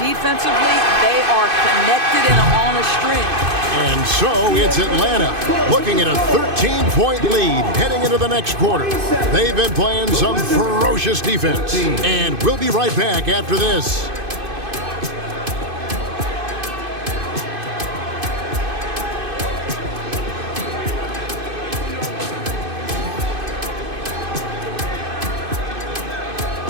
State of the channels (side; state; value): left; late; 2.5 ms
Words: they are connected and on a string. And so it's Atlanta looking at a 13-point lead heading into the next quarter. They've been playing some ferocious defense. And we'll be right back after this.